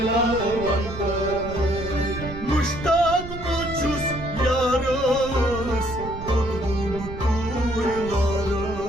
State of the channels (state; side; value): noise; right; rumble, 10 dB below the sound